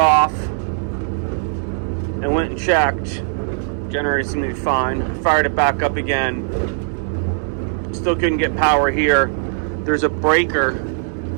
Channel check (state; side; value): silent; left; digital silence